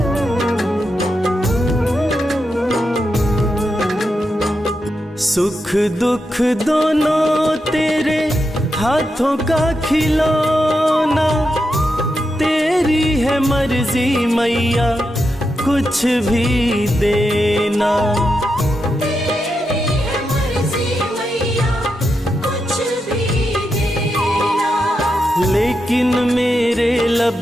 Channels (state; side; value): normal; both; correlation 0.86